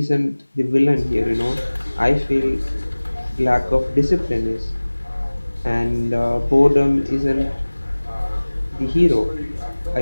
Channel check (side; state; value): both; inverted; correlation -1.00